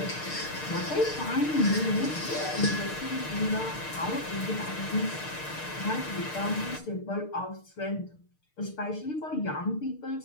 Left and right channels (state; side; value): late; right; 6.6 ms